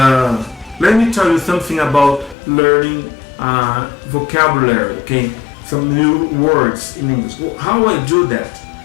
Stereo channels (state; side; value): drops out; right; at 2.4 s